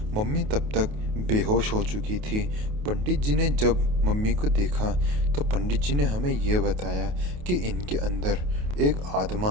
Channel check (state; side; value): late; left; 28 ms